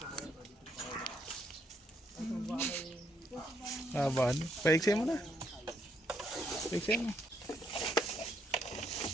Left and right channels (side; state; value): both; normal; correlation 0.73